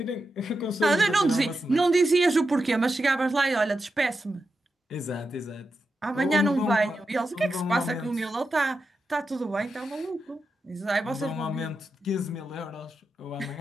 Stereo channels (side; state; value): both; normal; correlation 0.89